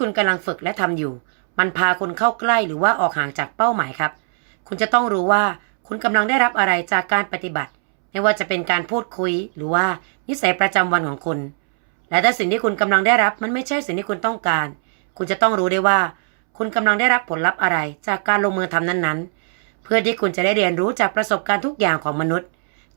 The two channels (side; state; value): left; silent; 66 dB below the other